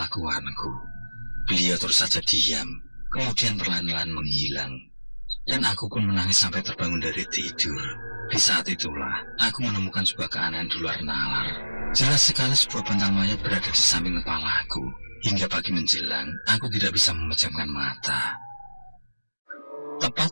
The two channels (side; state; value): both; inverted; correlation -1.00